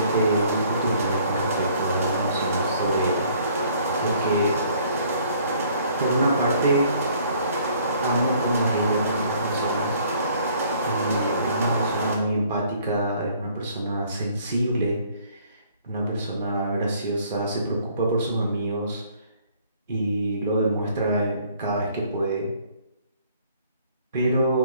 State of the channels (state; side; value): inverted; both; correlation -0.60